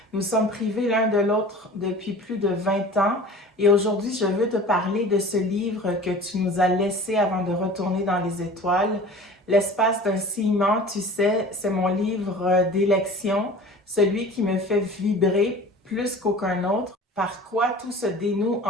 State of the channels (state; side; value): normal; both; correlation 0.41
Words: Nous sommes privés l'un de l'autre depuis plus de 20 ans. Et aujourd'hui, je veux te parler de ce livre que tu nous as laissé avant de retourner dans les étoiles. L'espace d'un ciment, tu sais, c'est mon livre d'élection, celui qui me fait vibrer plus qu'aucun autre, par quoi tout se dénoue